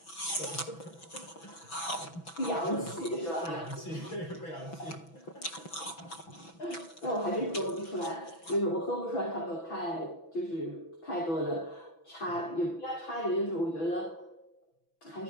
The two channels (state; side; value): late; right; 6.0 ms